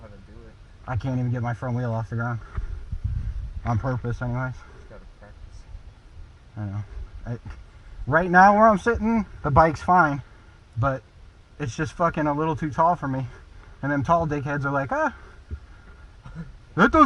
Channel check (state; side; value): identical; both; correlation 1.00